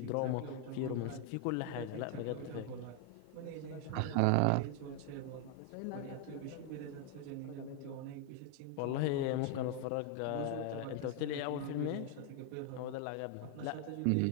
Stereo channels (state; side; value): different; both; correlation 0.00